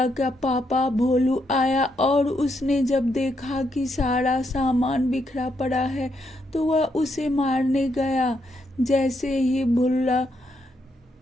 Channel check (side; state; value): both; normal; correlation 0.78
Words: का पापा भोलू आया और उसने जब देखा कि सारा सामान बिखरा पड़ा है तो वह उसे मारने गया। जैसे ही भुल्ला